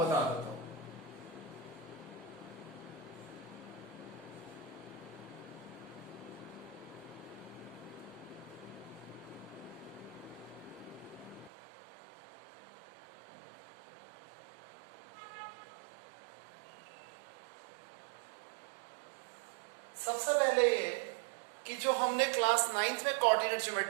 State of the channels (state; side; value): drops out; left; at 11.5 s